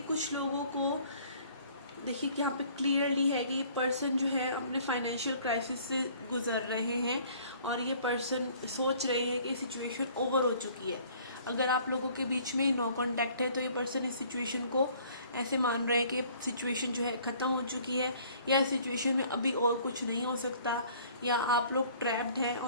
कुछ लोगों को देखिए कि यहाँ पे क्लियरली है कि ये पर्सन जो है अपने फाइनेंशियल क्राइसिस से गुजर रहे हैं, और ये पर्सन सोच रहे हैं कि सिचुएशन ओवर हो चुकी है। अगर आप लोगों के बीच में नो कांटेक्ट है तो ये पर्सन इस सिचुएशन को ऐसे मान रहे हैं कि सिचुएशन जो है ख़त्म हो चुकी है, या इस सिचुएशन में अभी और कुछ नहीं हो सकता, या आप लोग ट्रैप्ड हैं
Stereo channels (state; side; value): inverted; both; correlation -0.55